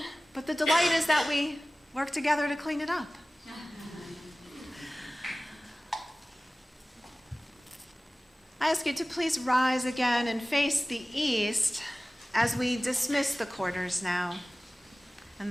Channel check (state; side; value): normal; both; correlation 0.97